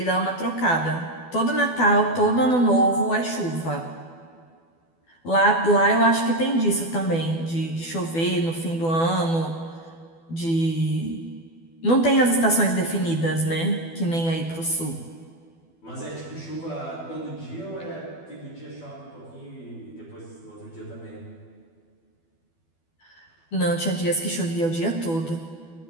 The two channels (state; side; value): late; right; 12 ms